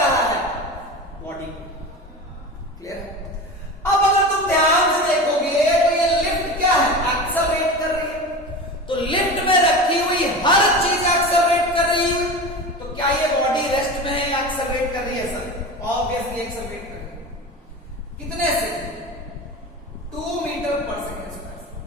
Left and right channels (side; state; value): both; normal; correlation 0.29